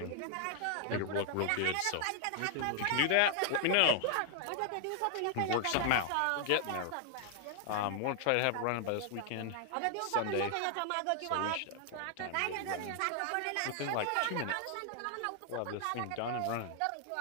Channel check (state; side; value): different; both; correlation 0.00